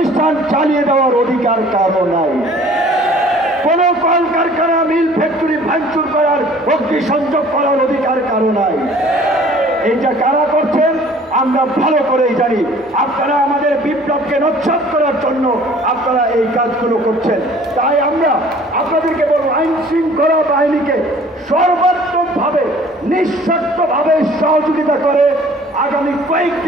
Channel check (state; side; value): normal; both; correlation 0.52